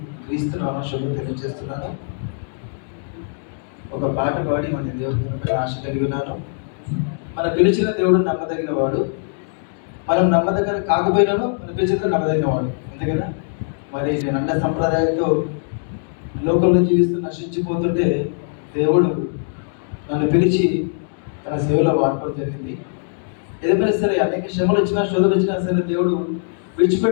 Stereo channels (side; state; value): right; silent; digital silence